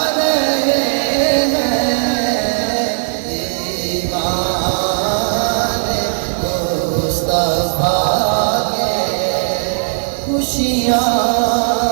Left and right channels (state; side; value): silent; left; digital silence